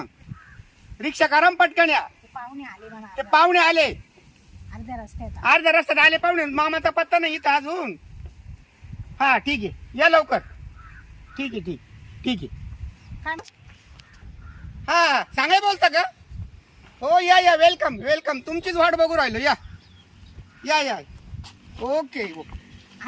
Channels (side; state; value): both; identical; correlation 1.00